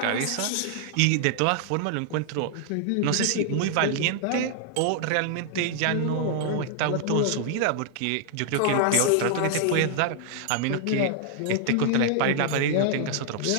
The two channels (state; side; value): different; both; correlation 0.00